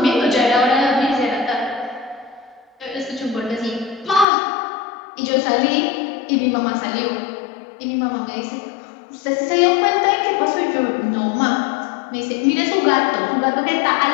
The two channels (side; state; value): right; drops out; at 4.2 s